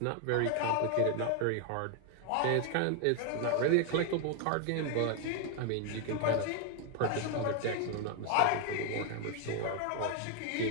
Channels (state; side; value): different; both; correlation 0.00